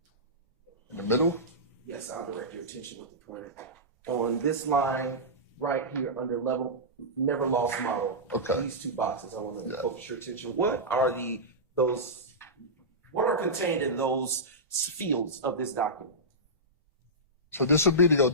In the middle? Yes, I'll direct your attention with the pointer. On this line right here under level never lost model. Okay. These two boxes, I want to Yeah. focus your attention. What are what are contained in those fields of this document? So this would be the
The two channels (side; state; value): both; normal; correlation -0.14